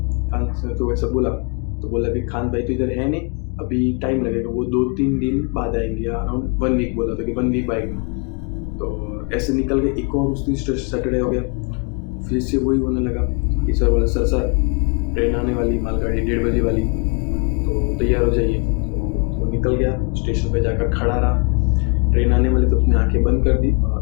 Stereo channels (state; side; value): quieter; right; 34.2 dB